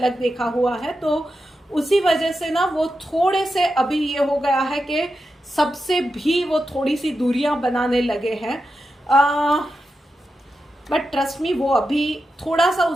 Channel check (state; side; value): normal; both; correlation 0.89